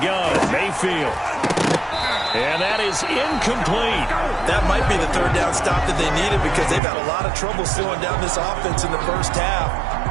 gun, Mayfield. And that is incomplete. That might be the 3rd down stop that they needed because they've had a lot of trouble slowing down this offense in the first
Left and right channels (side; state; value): left; drops out; at 6.8 s